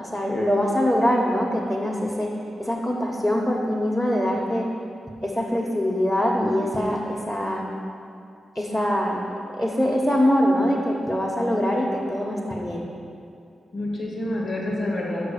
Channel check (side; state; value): both; normal; correlation 0.92